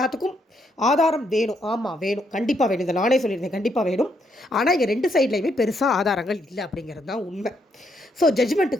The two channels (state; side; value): normal; both; correlation 0.75